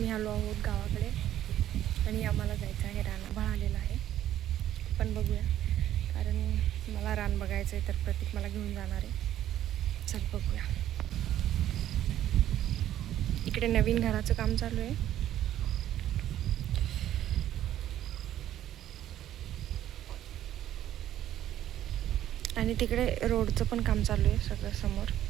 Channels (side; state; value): left; quieter; 12.1 dB